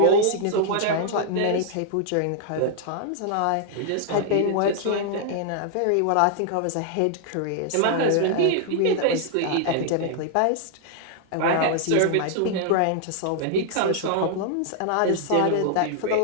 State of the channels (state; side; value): different; both; correlation -0.01